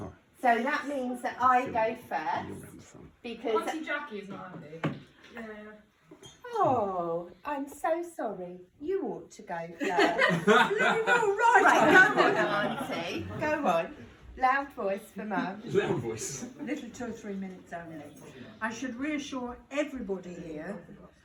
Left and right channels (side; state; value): both; identical; correlation 1.00